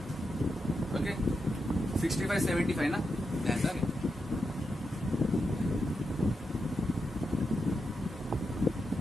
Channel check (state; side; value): normal; both; correlation 0.86